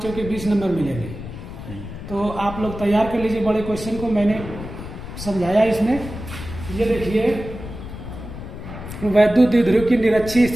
चौके 20 नंबर मिलेंगे। तो आप लोग तैयार कर लीजिए बड़े क्वेश्चन को, मैंने समझाया इसमें। ये देखिए, वैद्युत द्विध्रुव की निरक्षीय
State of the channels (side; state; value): left; noise; rumble, 10 dB below the sound